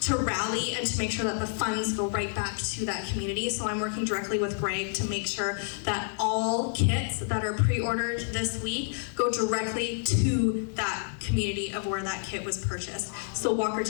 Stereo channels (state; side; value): silent; right; 59 dB below the other